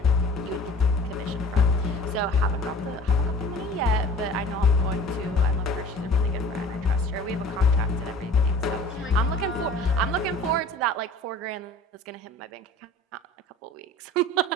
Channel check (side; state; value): both; normal; correlation 0.45